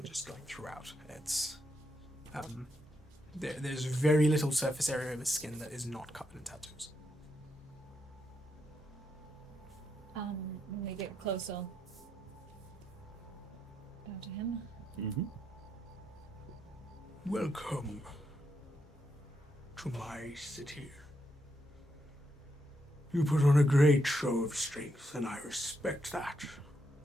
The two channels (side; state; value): both; normal; correlation 0.80